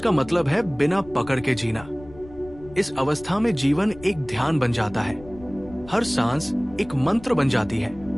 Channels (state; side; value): noise; left; rumble, 19 dB below the sound